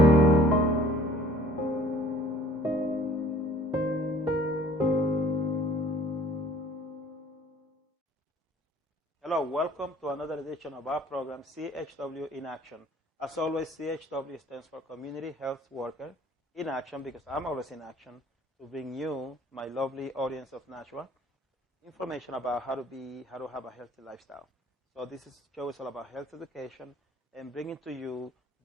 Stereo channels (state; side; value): normal; both; correlation 0.54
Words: Hello, welcome to another edition of our program, CHW in Action. As always, CHW stands for Community Health Worker in Action, because I'm always in action to bring you, my lovely audience of Nashua, information about how to have a healthy lifestyle. So this show is all about health education and bringing to you